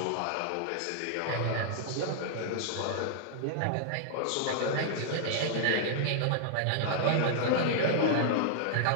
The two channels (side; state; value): both; different; correlation -0.01